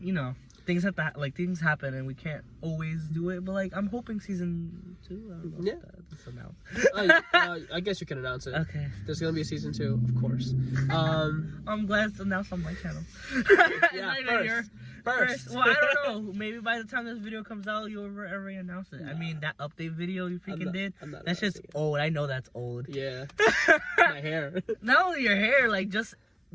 you know, things have to things happen and we can't always do it, but like, I'm hoping season 2, I don't know if that's announced. I guess you can announce it. Okay, There's gonna be a season 2, of course. I'm glad it's announced on my channel. Yeah, Not even first. Well, I don't know, maybe by the time this video comes out, you'll already announce it. I mean, that update video you freaking did, I'm not that's just announcing it. old. I know that's old. Yeah. My hair. Not only your hair, like, just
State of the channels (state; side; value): identical; both; correlation 1.00